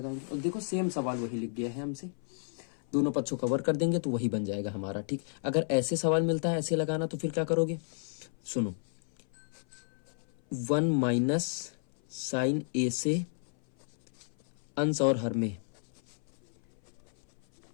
और देखो सेम सवाल वही लिख गया है हमसे, दोनों पक्षों कवर कर देंगे तो वही बन जाएगा हमारा, ठीक। अगर ऐसे सवाल मिलता है ऐसे लगाना, तो फिर क्या करोगे, सुनो, 1 - sin a से अंश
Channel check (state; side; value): silent; right; 56 dB below the other